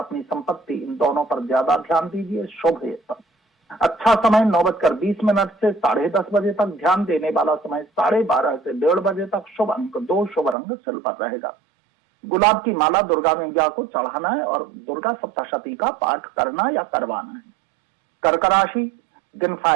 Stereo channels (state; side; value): drops out; left; at 10.6 s